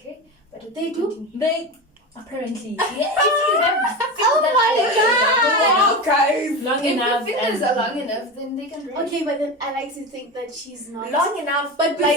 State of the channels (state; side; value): normal; both; correlation 0.23